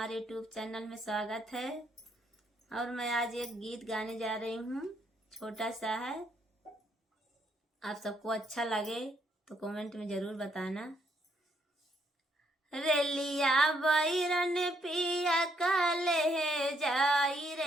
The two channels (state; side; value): normal; both; correlation 0.73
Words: यूट्यूब चैनल में स्वागत है। और मैं आज एक गीत गाने जा रही हूँ, छोटा सा है। आप सबको अच्छा लगे तो कमेंट में ज़रूर बताना। रेलिया बैरन पिया काले जाई